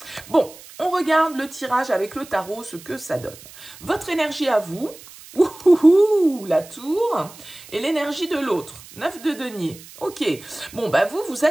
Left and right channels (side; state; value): right; noise; hiss, 19 dB below the sound